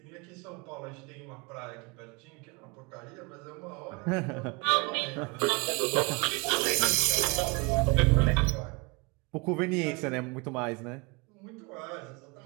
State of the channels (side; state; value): left; quieter; 29.7 dB